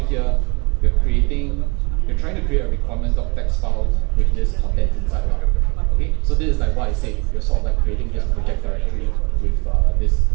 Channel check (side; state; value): left; quieter; 29.8 dB